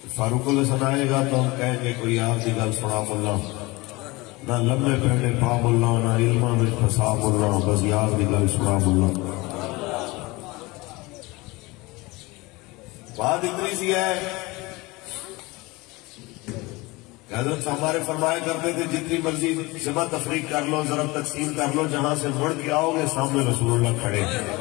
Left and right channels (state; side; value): quieter; right; 22.9 dB